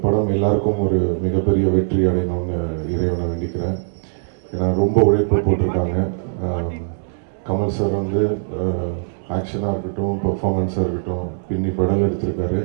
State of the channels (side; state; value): left; silent; digital silence